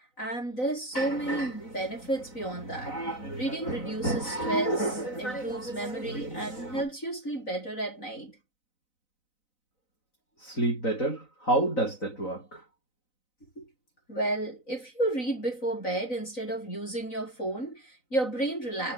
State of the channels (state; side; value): late; right; 4.0 ms